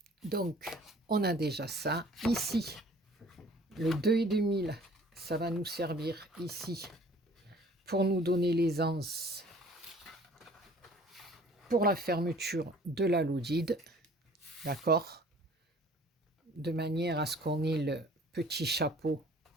Donc, on a déjà ça. Ici, le 2,5, ça va nous servir ici pour nous donner l'aisance pour la fermeture de la lodide, d'accord? De manière à ce qu'on ait le petit chapeau,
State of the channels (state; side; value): normal; both; correlation 0.52